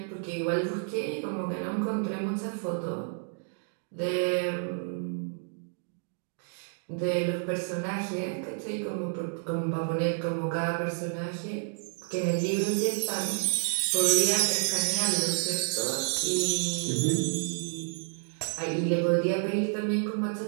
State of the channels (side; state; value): left; silent; 57 dB below the other